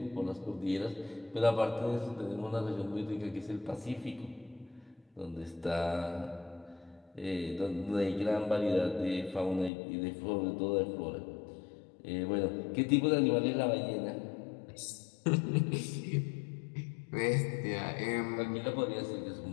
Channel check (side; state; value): right; drops out; at 9.7 s